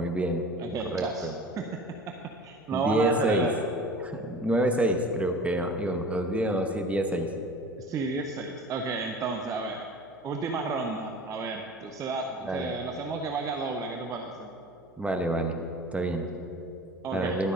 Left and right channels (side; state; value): right; noise; hum, 29 dB below the sound